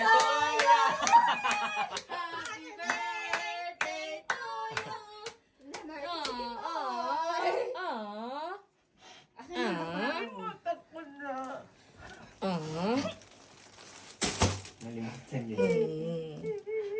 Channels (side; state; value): both; identical; correlation 1.00